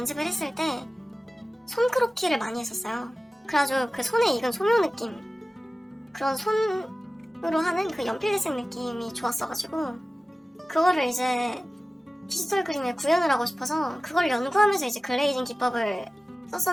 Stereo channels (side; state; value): both; normal; correlation 0.97